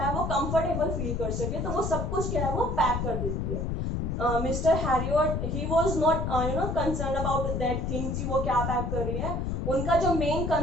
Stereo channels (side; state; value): left; noise; rumble, 1 dB below the sound